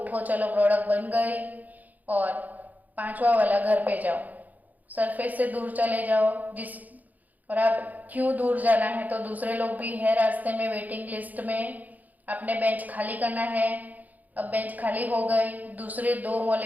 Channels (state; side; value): late; left; 0.080 ms